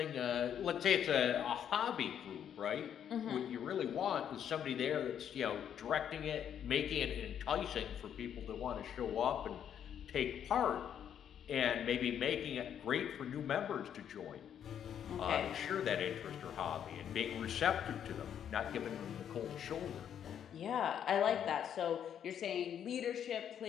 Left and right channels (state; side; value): quieter; right; 9.1 dB